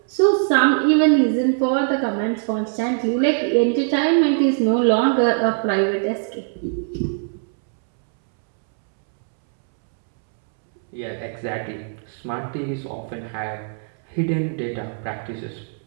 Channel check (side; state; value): left; silent; 65 dB below the other